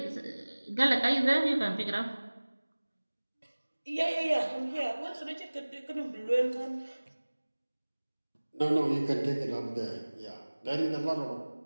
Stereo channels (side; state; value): both; inverted; correlation -1.00